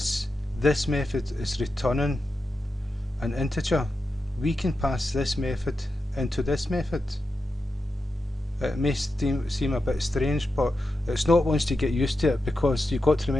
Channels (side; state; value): both; normal; correlation 0.89